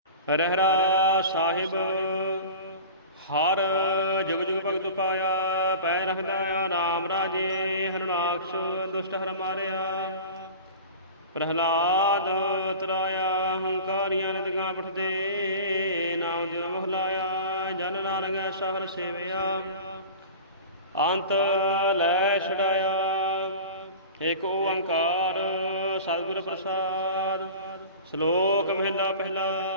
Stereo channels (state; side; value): inverted; both; correlation -0.36